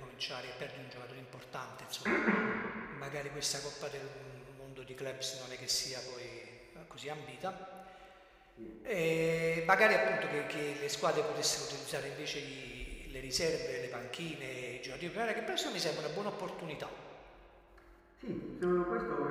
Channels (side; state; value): both; identical; correlation 1.00